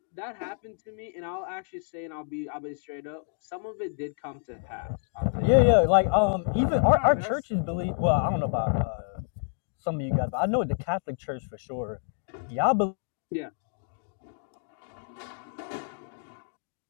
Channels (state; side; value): silent; right; digital silence